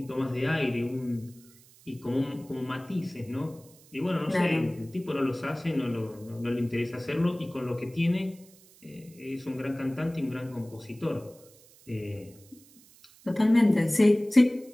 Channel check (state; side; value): noise; right; hiss, 26 dB below the sound